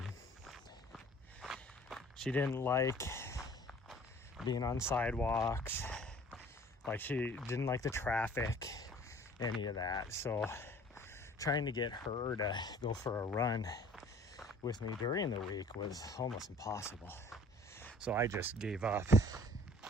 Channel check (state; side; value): normal; both; correlation 0.51